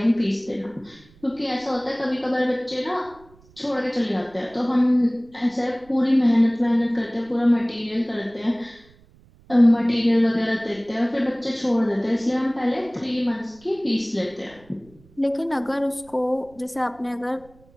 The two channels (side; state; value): right; noise; rumble, 28 dB below the sound